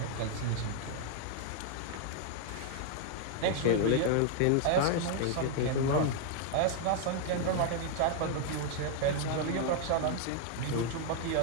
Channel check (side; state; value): both; different; correlation 0.00